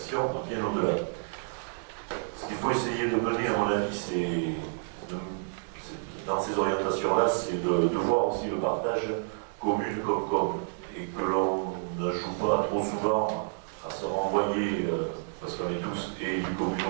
dans ces orientations-là, c'est de voir aussi le partage commune comme, et que l'on ne joue pas trop souvent à se renvoyer, parce qu'on est tous élus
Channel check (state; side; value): silent; left; digital silence